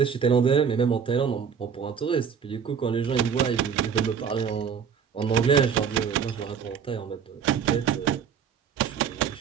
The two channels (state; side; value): quieter; left; 7.1 dB